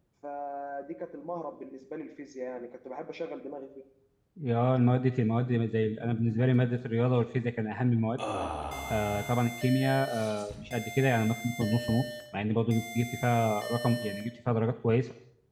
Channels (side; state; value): both; identical; correlation 1.00